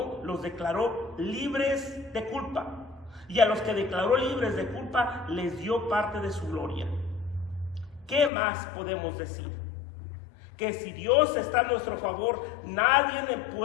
los declaró libres de culpa, y a los que declaró libres de culpa les dio parte de su gloria. ¿Qué más podemos decir? Que si Dios está a nuestro favor, nadie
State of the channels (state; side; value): drops out; right; at 8.3 s